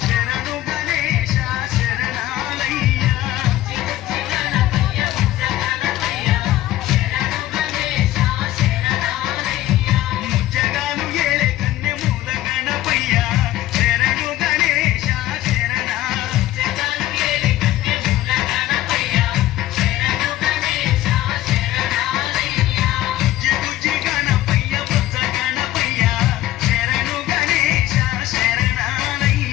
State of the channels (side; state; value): right; quieter; 14.8 dB